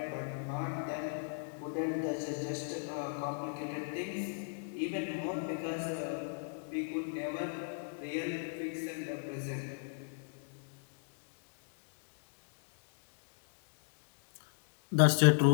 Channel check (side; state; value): right; silent; digital silence